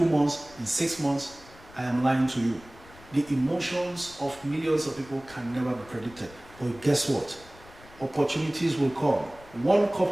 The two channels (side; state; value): left; noise; rumble, 22 dB below the sound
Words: months, in 6 months, I am lying to you. The emotions of millions of people can never be predicted. But guess what? Opportunities will come. One